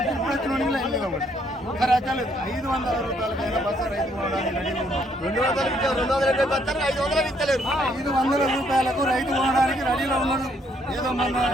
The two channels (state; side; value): normal; both; correlation 0.69